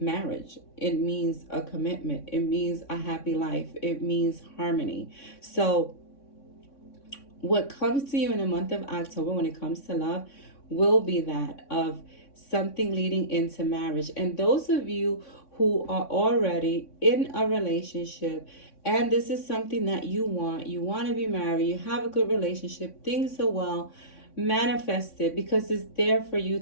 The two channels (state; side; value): late; right; 3.6 ms